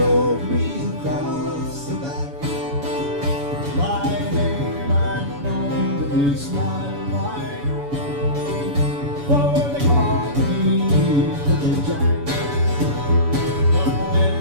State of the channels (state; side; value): late; left; 7.1 ms